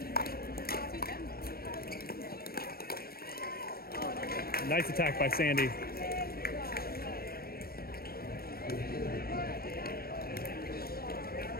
Nice attack by Sandy.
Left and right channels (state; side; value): late; right; 0.44 ms